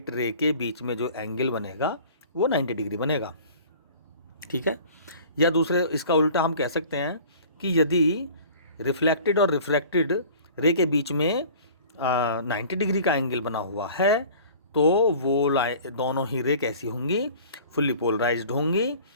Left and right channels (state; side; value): inverted; both; correlation -0.45